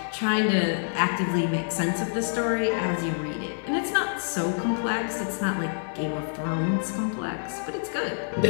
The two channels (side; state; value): right; silent; digital silence